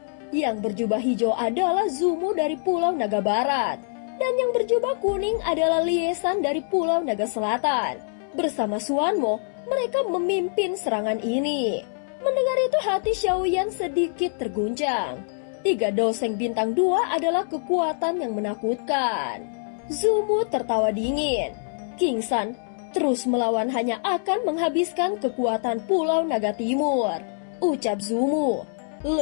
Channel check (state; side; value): silent; right; digital silence